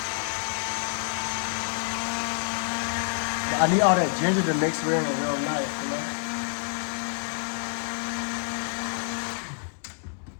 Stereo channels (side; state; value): right; silent; 60 dB below the other